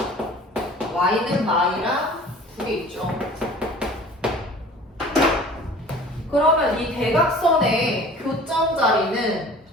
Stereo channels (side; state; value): both; normal; correlation 0.45